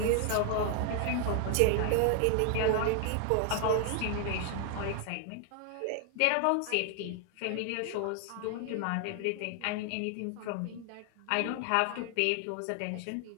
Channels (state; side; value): different; both; correlation 0.00